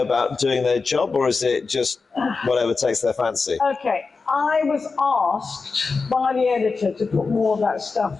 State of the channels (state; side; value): quieter; right; 4.4 dB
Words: about doing their job, or is it just whatever takes their fancy? Okay, I was asked by the editor to put more of that stuff